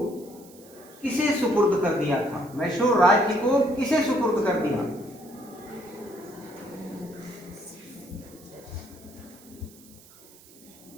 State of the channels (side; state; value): right; noise; hiss, 23 dB below the sound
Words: किसे सुपुर्द कर दिया था? मैसूर राज्य को किसे सुपुर्द कर दिया?